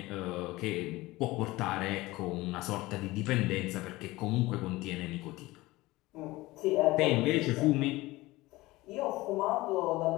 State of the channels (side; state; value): right; quieter; 19.7 dB